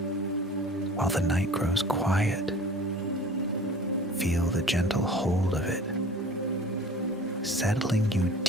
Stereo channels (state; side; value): normal; both; correlation 0.44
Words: while the night grows quiet. Feel the gentle hold of it, settling you